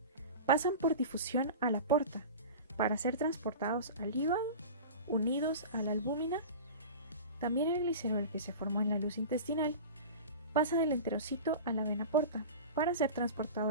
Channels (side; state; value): both; inverted; correlation -0.32